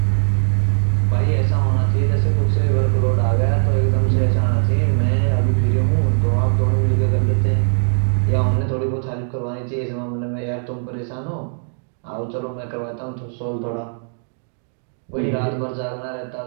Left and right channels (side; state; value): left; silent; digital silence